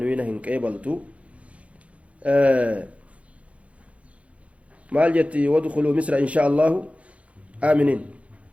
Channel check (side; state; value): left; late; 0.064 ms